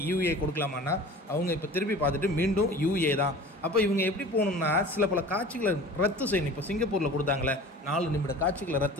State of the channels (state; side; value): normal; both; correlation 0.40